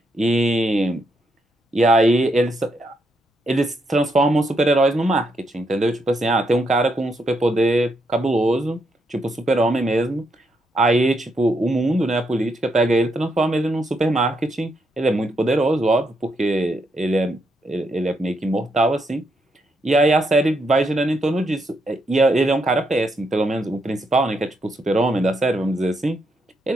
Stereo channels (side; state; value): both; normal; correlation 0.79